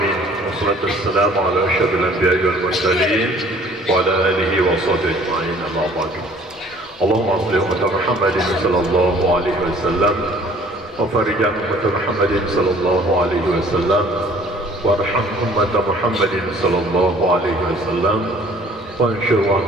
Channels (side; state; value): both; normal; correlation 0.54